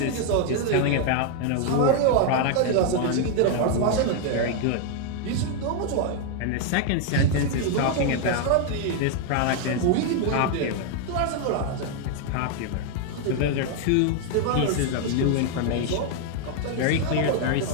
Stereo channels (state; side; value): different; both; correlation 0.00